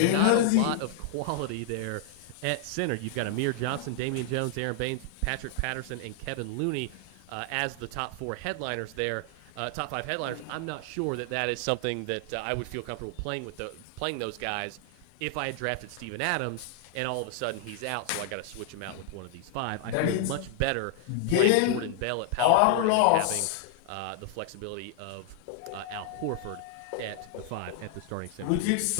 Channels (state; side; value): different; both; correlation 0.00